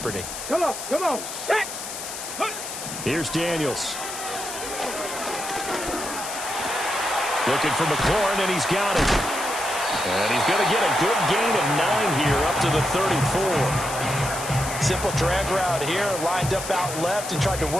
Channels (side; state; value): left; noise; hiss, 8 dB below the sound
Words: Come on, set. Here's Daniels. Looking for McLaurin, and he's got it. And he's going to get a good gain of 9 here up to the 34. Simple drag route here, lined up out left and tried to